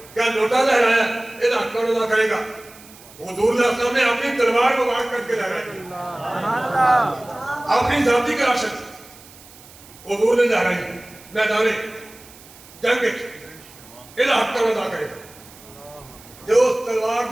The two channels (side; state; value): right; noise; hiss, 22 dB below the sound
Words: کیا لوٹا لہرایا یہ حق کون ادا کرے گا؟ حضور صلی اللہ علیہ وسلم نے اپنی تلوار کو واقع کر کے لہرائی، اپنی ذاتی کراشت حضور نے لہرائی میدان جنگ الہ حق کا ادا کرے جو اس تلوار